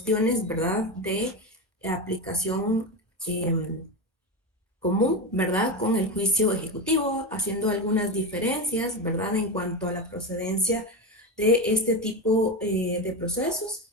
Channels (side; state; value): both; normal; correlation 0.17